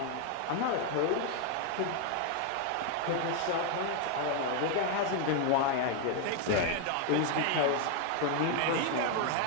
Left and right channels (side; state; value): both; different; correlation 0.01